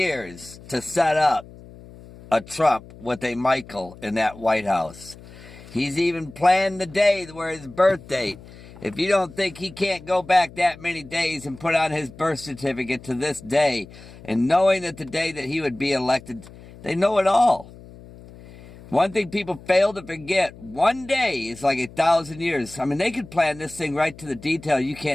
to set up a Trump with a Michael in that White House. He's even planned the day where his birth date. If you don't think he can't go back that many days and put on his birth certificate to this day, and knowing that the day that he would be elected, they know it all. One thing people fail to forget, one day is like 1,000 years. I mean, they could plan this thing right to the detail. You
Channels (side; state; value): left; noise; hum, 19 dB below the sound